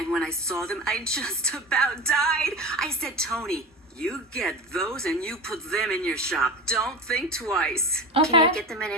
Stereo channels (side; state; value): both; normal; correlation 0.28